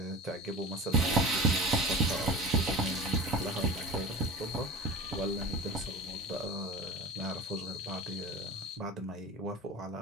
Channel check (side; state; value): both; normal; correlation 0.33